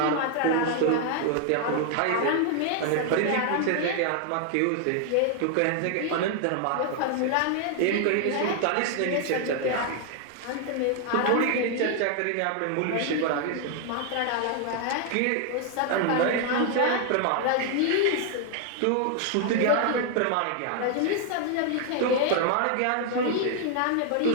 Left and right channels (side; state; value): both; different; correlation 0.00